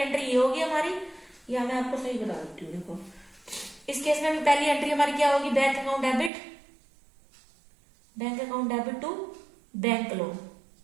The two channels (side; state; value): left; drops out; at 6.3 s